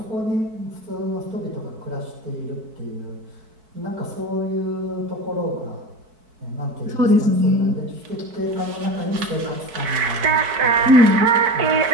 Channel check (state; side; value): late; left; 4.6 ms